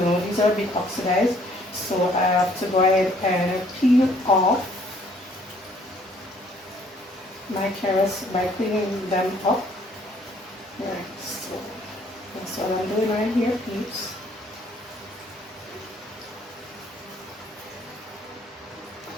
these are a bit oxidized. So I have to go ahead and peel off my carrots by cleaning them up. Right, so that's what I'm doing right here, peeps.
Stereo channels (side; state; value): both; normal; correlation 0.62